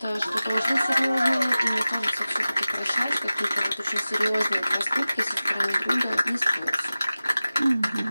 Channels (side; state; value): both; inverted; correlation -0.97